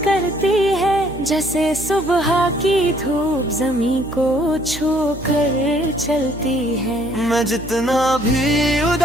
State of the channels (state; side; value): noise; right; hum, 14 dB below the sound